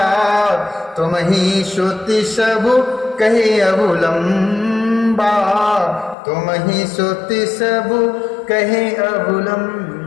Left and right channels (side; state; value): right; drops out; at 6.2 s